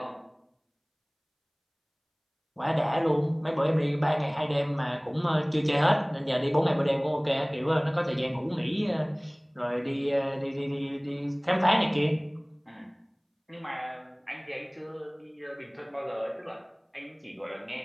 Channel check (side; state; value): both; identical; correlation 1.00